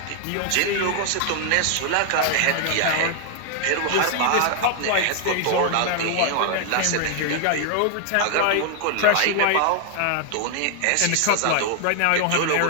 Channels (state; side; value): different; both; correlation 0.00